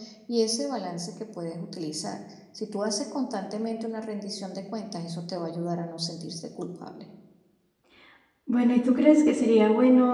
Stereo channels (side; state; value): both; identical; correlation 1.00